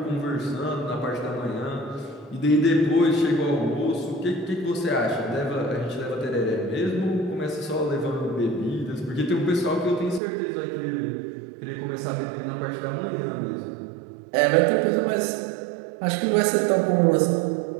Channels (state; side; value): drops out; left; at 10.2 s